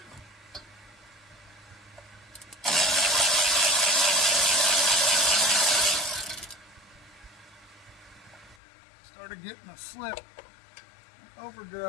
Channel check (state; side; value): drops out; right; at 8.6 s